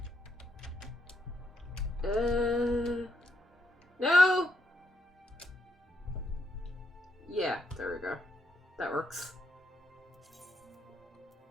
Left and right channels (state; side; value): normal; both; correlation 0.79